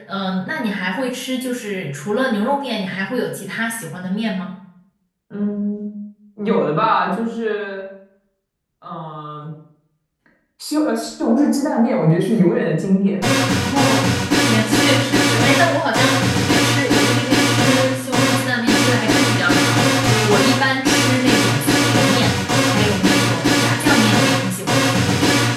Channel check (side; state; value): both; identical; correlation 1.00